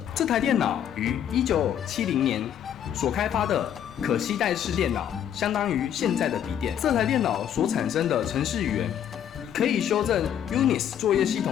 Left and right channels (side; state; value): right; quieter; 9.7 dB